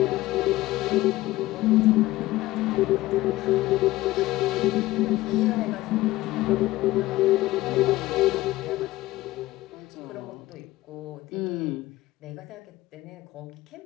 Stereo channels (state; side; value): quieter; right; 17.4 dB